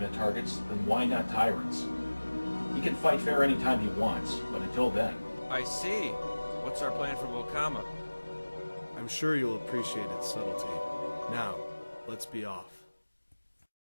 targets, then why not tyrants? He can fight fair anytime he wants, but until then... I see. What's our plan for Bokama? I'm sure you'll appreciate its subtlety. Now, let's be off.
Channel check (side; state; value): both; inverted; correlation -1.00